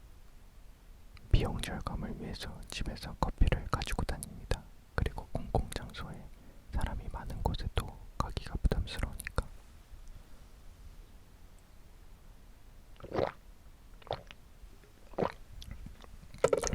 비용 절감을 위해서 집에서 커피를 가지고 다닙니다. 그리고 공공장소에 사람이 많은 곳에도 가기가 부담스러우니까.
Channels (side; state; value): both; identical; correlation 1.00